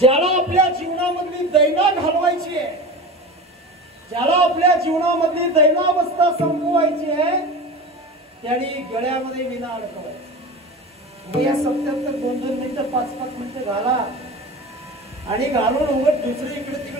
आपल्या जीवनामधली दैना घालवायची आहे, ज्याला आपल्या जीवनामधली दैनावस्था संपवायची आहे, त्याने गळ्यामध्ये विणा अडकवायचा. या 77 2-2 मिनिटं 5-5 मिनिटं घाला आणि घालून उगत दुसरे इकडे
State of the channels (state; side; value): normal; both; correlation 0.31